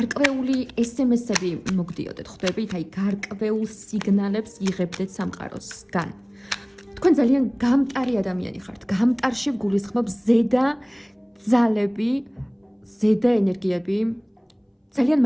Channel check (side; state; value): both; identical; correlation 1.00